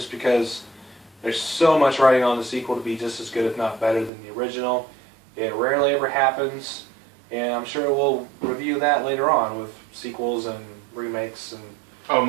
because there's so much writing on the sequel to be just as good, if not better, than the original. It rarely ever happens, and I'm sure we'll review that later on with sequels and remakes and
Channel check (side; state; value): left; drops out; at 4.1 s